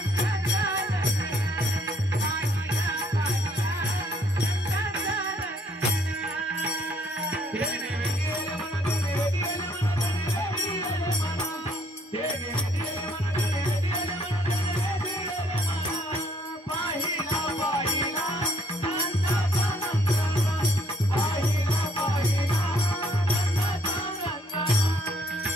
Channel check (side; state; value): both; normal; correlation 0.66